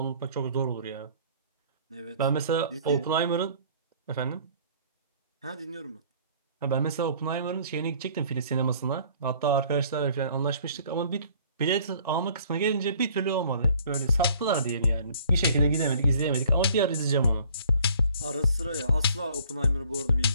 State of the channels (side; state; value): both; inverted; correlation -0.55